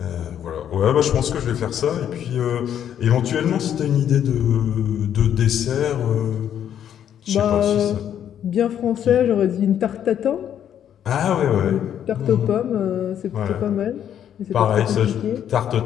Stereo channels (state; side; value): quieter; right; 9.7 dB